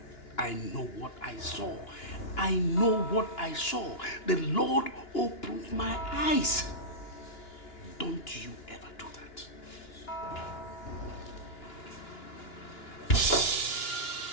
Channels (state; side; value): late; right; 2.9 ms